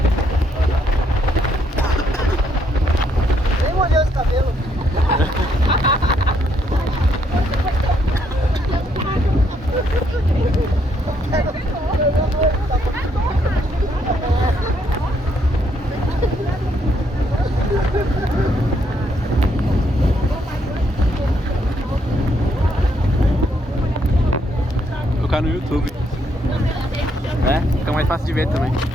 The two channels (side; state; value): both; normal; correlation 0.73